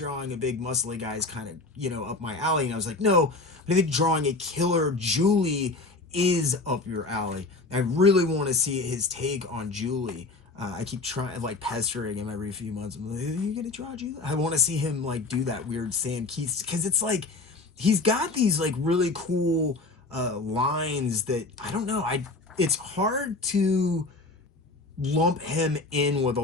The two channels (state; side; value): quieter; right; 3.4 dB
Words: a big muscly guy is kind of up my alley. And I was like, no, but I think drawing a killer Julie is up your alley. I really want to see his take on Julie. I keep trying, pestering him every few months. I'm like, are you gonna draw Julie? I want to see him do that weird Sam Keith, because it's he's got these really cool lines that I don't know. It's hard to lump him in with a